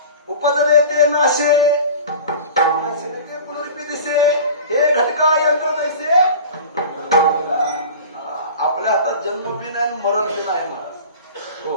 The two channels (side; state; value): both; inverted; correlation -0.37